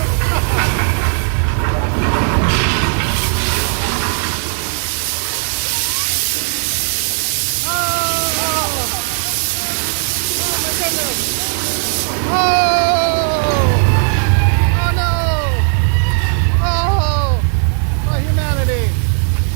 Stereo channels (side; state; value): left; silent; 59 dB below the other